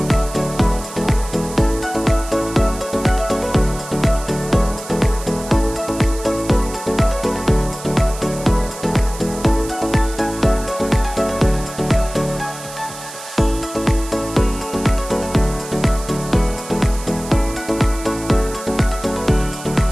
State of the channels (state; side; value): noise; right; hiss, 14 dB below the sound